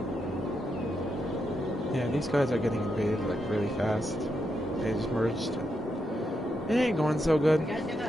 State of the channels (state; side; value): normal; both; correlation 0.83